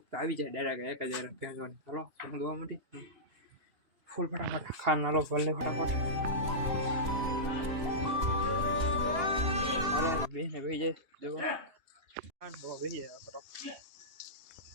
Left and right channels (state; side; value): late; left; 2.9 ms